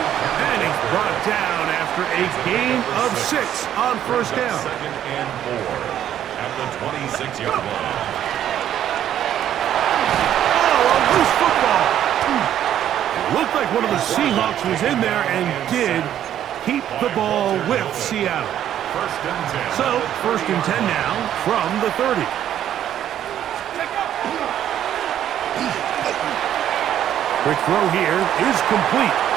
And he's brought down after a gain of 6 on first down. Second and 4 at the 26-yard line. Loose football. It looked like one of the Seahawks was in there and did keep the ball with Seattle. First and 10. So, first and 10 now from the 30. Quick throw here is complete.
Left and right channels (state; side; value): quieter; left; 10.8 dB